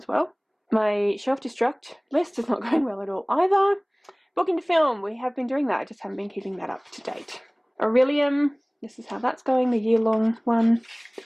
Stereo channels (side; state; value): both; identical; correlation 1.00